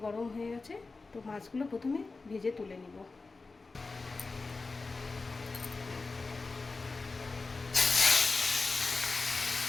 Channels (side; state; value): right; quieter; 3.8 dB